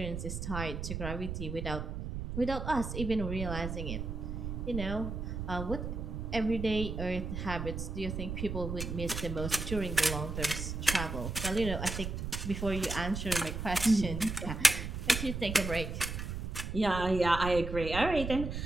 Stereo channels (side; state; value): right; noise; rumble, 5 dB below the sound